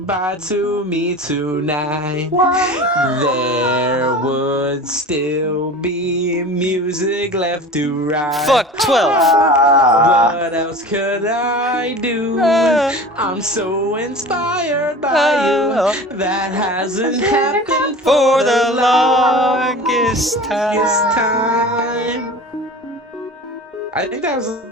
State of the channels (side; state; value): both; normal; correlation 0.36